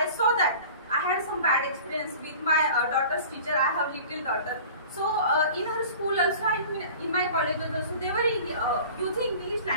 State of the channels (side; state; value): both; inverted; correlation -0.42